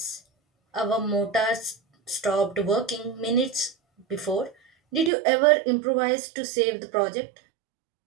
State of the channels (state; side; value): drops out; left; at 5.1 s